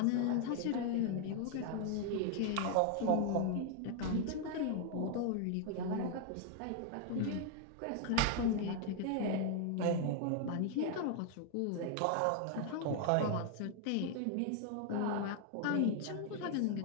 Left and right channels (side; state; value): both; different; correlation 0.00